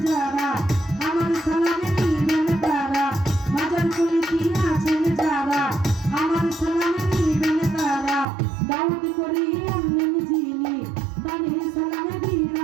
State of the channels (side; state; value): left; drops out; at 8.2 s